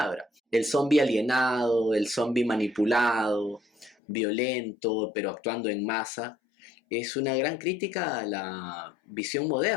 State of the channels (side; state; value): right; drops out; at 4.0 s